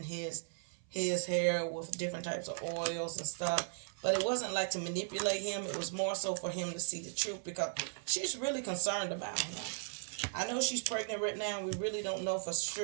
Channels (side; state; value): left; silent; 53 dB below the other